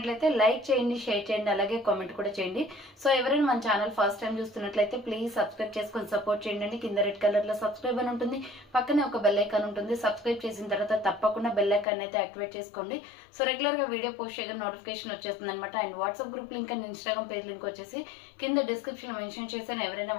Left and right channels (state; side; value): drops out; right; at 11.9 s